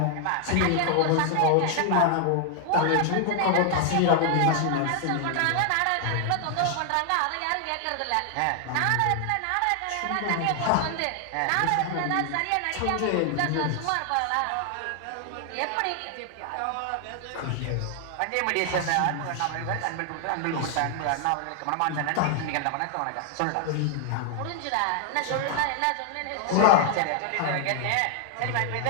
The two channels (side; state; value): both; different; correlation 0.00